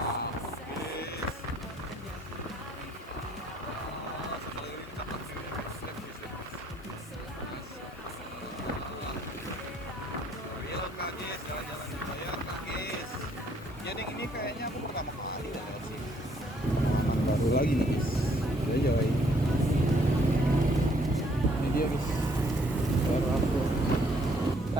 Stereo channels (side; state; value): both; normal; correlation 0.65